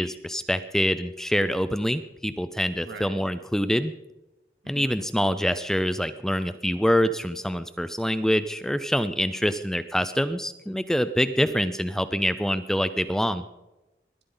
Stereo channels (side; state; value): both; normal; correlation 0.93